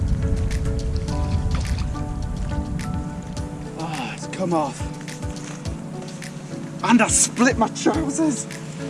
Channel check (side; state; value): both; identical; correlation 1.00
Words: Oh, it's come off. And I split my trousers!